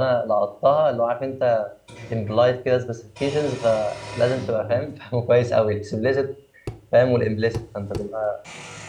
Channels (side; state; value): both; identical; correlation 1.00